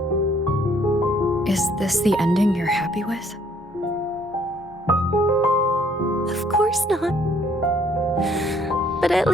Is this the ending you're happy with? Of course not. But at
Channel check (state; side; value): normal; both; correlation 0.63